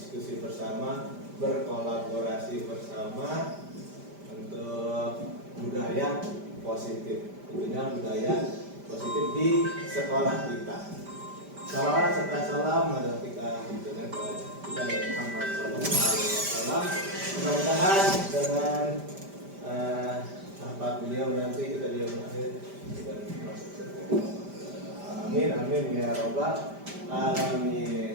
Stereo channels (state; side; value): late; left; 5.0 ms